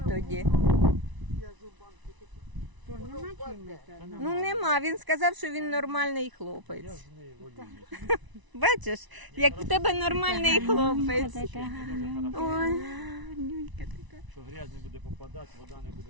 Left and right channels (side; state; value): left; late; 1.0 ms